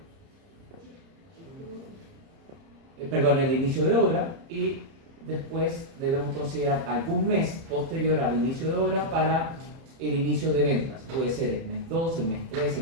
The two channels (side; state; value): left; late; 30 ms